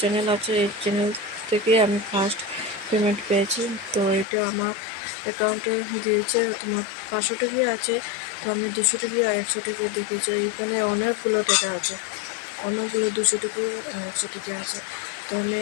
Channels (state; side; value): drops out; right; at 4.2 s